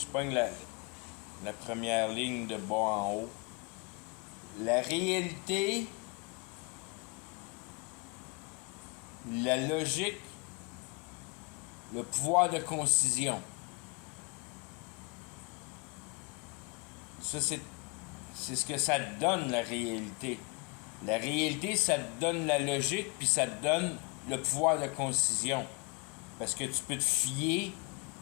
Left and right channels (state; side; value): quieter; right; 31.0 dB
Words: pogne la première ligne de bas en haut. La réalité, la logique, le pouvoir de concision. Ça, c'est ce que ça te donne, la réalité. La réalité, ça te donne la logique, puis ça te donne le pouvoir de concision. Parce que tu peux te fier